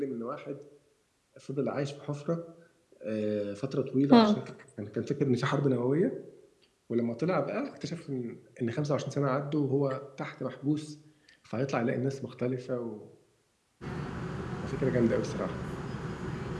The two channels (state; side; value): identical; both; correlation 1.00